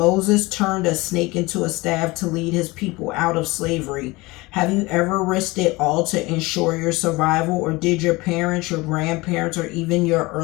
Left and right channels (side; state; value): right; quieter; 22.4 dB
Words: turned a snake into a staff to lead his people out of slavery. Have you ever risked it all to ensure your survival? Or did your parents, your grandparents, or even your